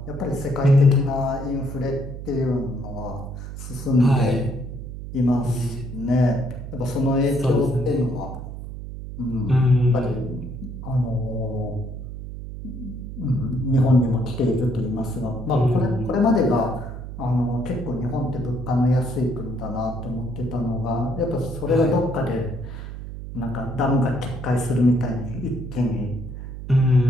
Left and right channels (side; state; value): right; noise; hum, 9 dB below the sound